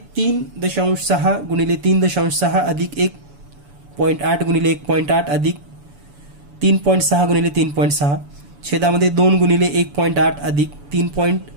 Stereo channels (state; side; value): late; left; 7.0 ms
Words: 3.6 गुणिले 3.6 अधिक 1.8 गुणिले 1.8 अधिक 3.6 गुणिले 3.6, छेदामध्ये 2 गुणिले 1.8 अधिक